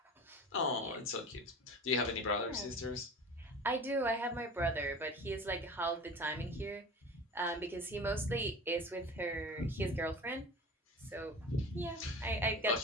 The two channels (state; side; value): normal; both; correlation 0.36